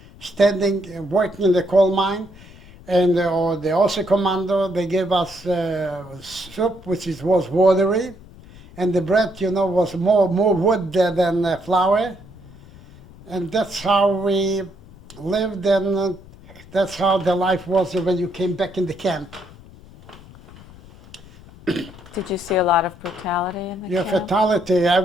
standing, working in the coal mine. And the Außer Commando, they gave us soup, which was watery, and the bread, you know, was more wood than flour. And that's how we lived, and that's how the life was when you came back in the camp. Did you see a lot of brutality in the camp? Fatality,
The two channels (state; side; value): noise; left; rumble, 21 dB below the sound